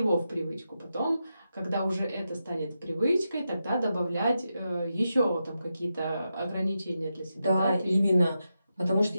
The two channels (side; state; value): both; inverted; correlation -0.88